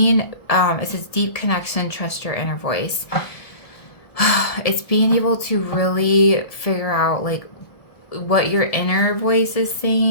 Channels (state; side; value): late; right; 1.7 ms